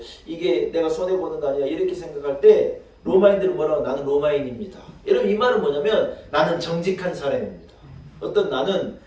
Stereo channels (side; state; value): both; identical; correlation 1.00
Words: 이게 내가 손해보는 거 아니야 이렇게 생각할 때 로마인들은 뭐라고 나는 로마인입니다. 여러분 이 말은 뭐냐면 나는 정직한 사람입니다. 어떤 나는